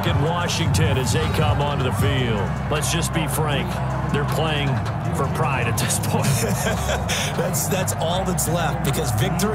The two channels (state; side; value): identical; both; correlation 1.00